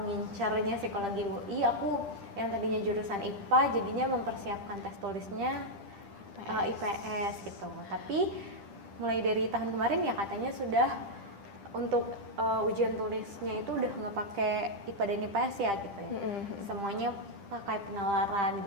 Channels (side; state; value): left; late; 10 ms